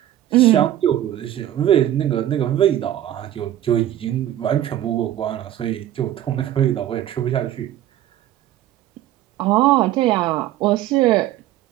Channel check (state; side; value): quieter; left; 12.6 dB